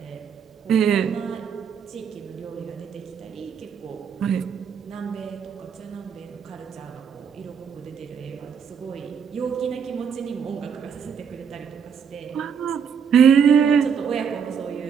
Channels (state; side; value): quieter; left; 7.1 dB